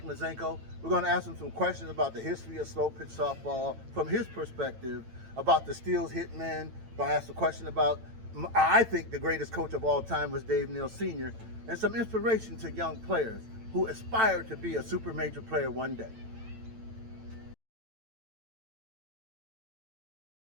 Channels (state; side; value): late; left; 9.0 ms